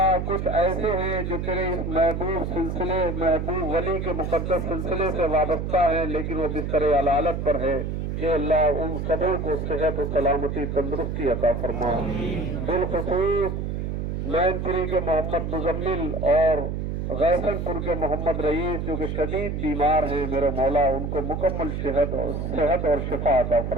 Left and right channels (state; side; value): noise; right; hum, 3 dB below the sound